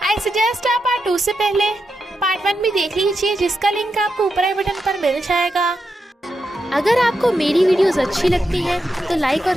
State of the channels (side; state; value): both; normal; correlation 0.86